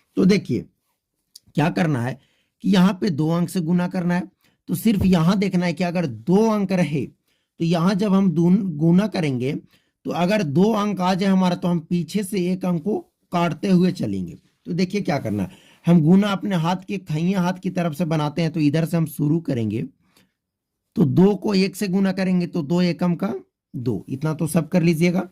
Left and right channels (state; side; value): identical; both; correlation 1.00